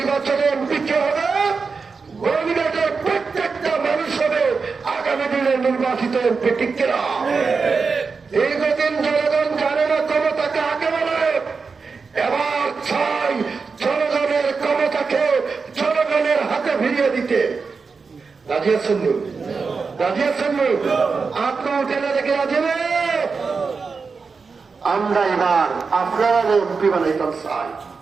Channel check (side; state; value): left; quieter; 4.9 dB